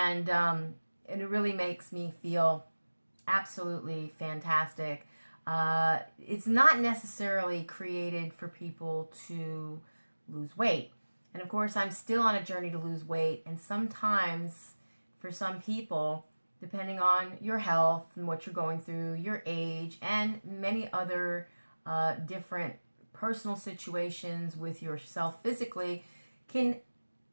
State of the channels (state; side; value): inverted; both; correlation -1.00